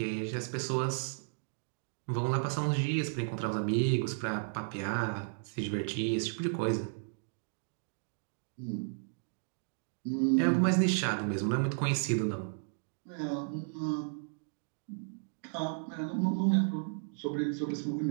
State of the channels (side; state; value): left; silent; digital silence